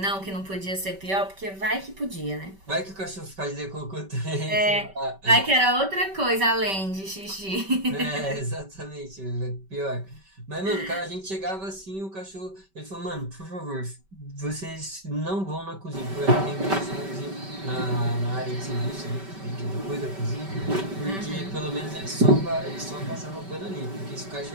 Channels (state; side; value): late; left; 5.2 ms